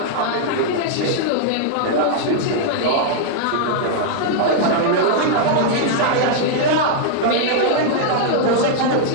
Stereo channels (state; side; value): different; both; correlation -0.01